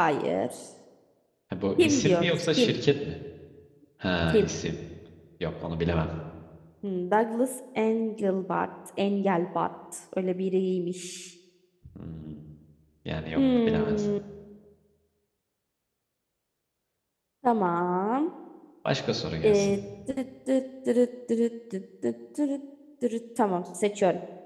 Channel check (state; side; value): identical; both; correlation 1.00